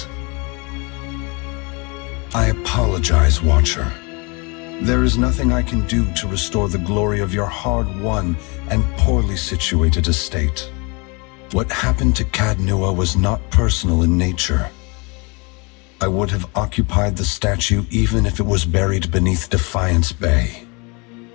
I apologize, Watcher. There is nothing I can do to restore the glory of your hard-won and poorly situated estate. What happened to Cadnua was not personal in nature. I would have occupied the statue even if it was buried beneath Defiance Bay.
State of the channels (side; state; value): right; quieter; 30.1 dB